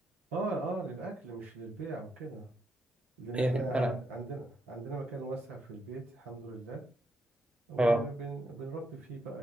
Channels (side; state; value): both; normal; correlation 0.79